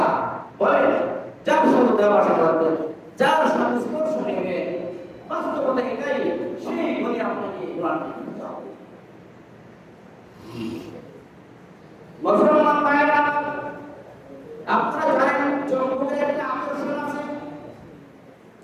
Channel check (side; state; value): both; identical; correlation 1.00